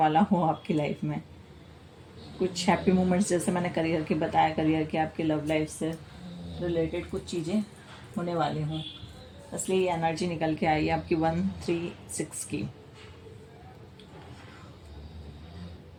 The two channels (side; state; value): both; identical; correlation 1.00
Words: हो आपकी लाइफ में। कुछ हैप्पी मोमेंट्स, जैसे मैंने करियर की बताया, करियर के आपके लव लाइफ से रिलेटेड कुछ चीज़ें होने वाली हों, इसलिए ये एनर्जी निकल के आई है आपकी 136 की।